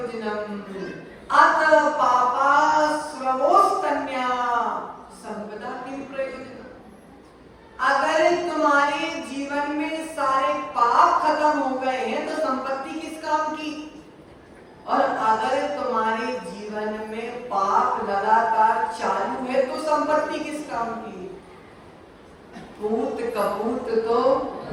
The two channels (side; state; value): both; identical; correlation 1.00